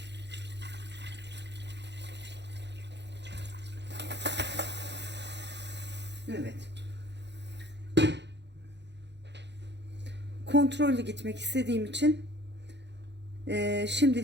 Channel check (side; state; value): left; late; 0.51 ms